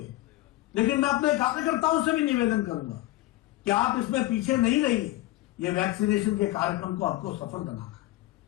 हैं, लेकिन मैं अपने कार्यकर्ताओं से भी निवेदन करूंगा कि आप इसमें पीछे नहीं रहिए। ये वैक्सीनेशन के कार्यक्रम को आपको सफल बनाना है।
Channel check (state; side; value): quieter; right; 17.5 dB